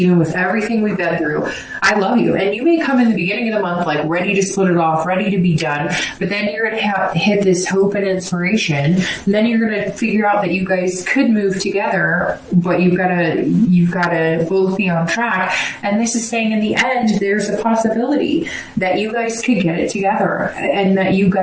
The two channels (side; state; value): both; identical; correlation 1.00